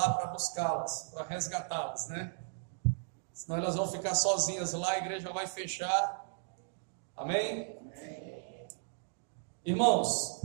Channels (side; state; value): left; silent; digital silence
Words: para buscá-las, para resgatá-las, né? Senão elas vão ficar sozinhas lá, a igreja vai fechar. Amém? Irmãos,